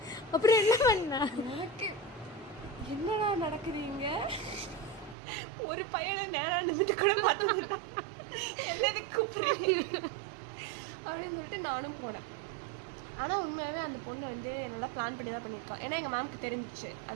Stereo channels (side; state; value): left; drops out; at 5.2 s